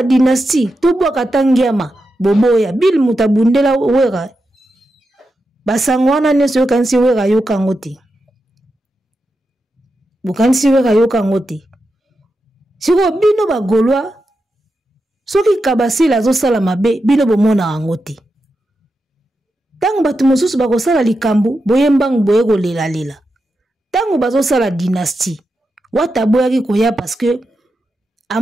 dynastie to bwaka tangiama boboya bil mutabundela Wera basango wana nyeso yo kanisi Wera yo kangote bukanisi Wera yo kangote siko bino bagolwa soki Kabasele azosala mabe bino bomona yango te. Tango bato mosusu bakosala likambo boyembangu boye kolela. Tango bazosala dynastie wata boyaki koya parce que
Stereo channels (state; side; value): normal; both; correlation 0.88